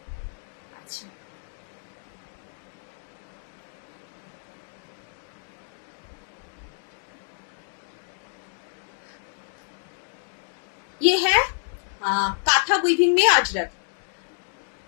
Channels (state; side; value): silent; right; digital silence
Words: अच्छा ये है काथा वीविंग में अजरक,